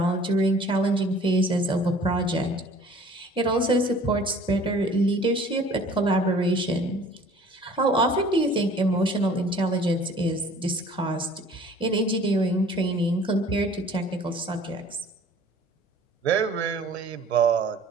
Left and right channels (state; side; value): normal; both; correlation 0.50